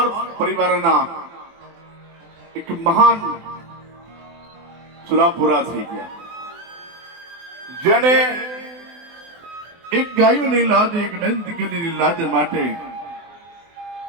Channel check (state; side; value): late; left; 24 ms